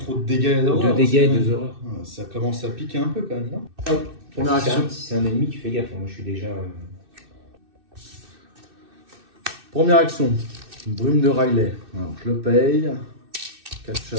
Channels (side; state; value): left; late; 2.6 ms